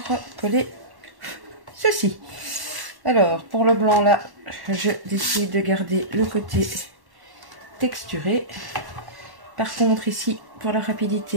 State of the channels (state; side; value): late; left; 1.1 ms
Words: coller ceci. Alors, pour le blanc là, je décide de garder le côté texturé. Par contre, ici, pour la